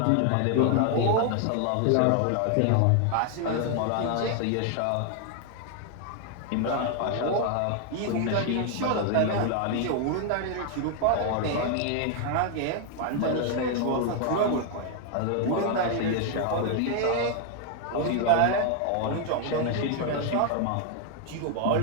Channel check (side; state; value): both; different; correlation 0.00